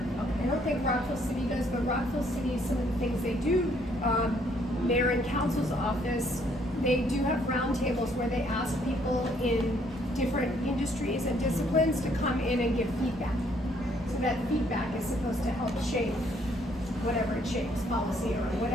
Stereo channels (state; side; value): normal; both; correlation 0.67